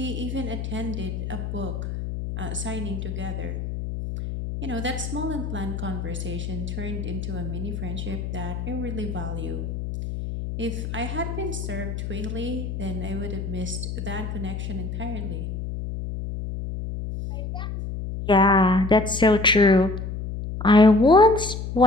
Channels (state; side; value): noise; left; hum, 5 dB below the sound